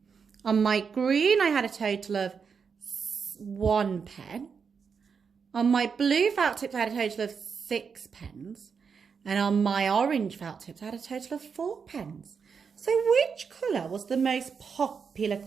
On my green, I had a total of 1 pen. On my blue felt tips, I had a total of 6 pens. And on my orange felt tips, I had a total of 4 pens. So which colour was the most popular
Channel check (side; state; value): left; quieter; 6.0 dB